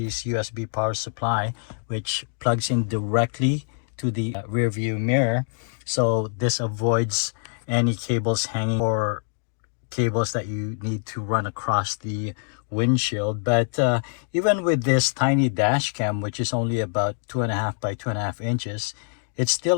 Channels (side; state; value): right; silent; digital silence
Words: USB power supply, which plugs in directly to the rear view mirror. So this avoids any cables hanging or cables that you need to run across the windshield. But even with this tiny dash cam, which is only about 2.5 by 2.5 inches, it's